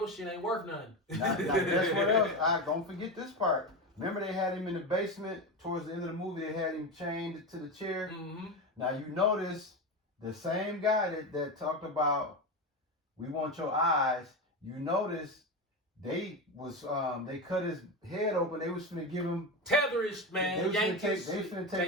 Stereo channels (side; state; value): both; normal; correlation 0.18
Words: shit ain't worth nothing. Now, guess what else? Don't forget this part. Remember they had him in the basement towards the end of the movie. They had him chained to the chair. Mm-hmm. Now you notice the same guy that talked about we want your eyes. You notice they cut his head open. They was finna give him tetherish, man. They finna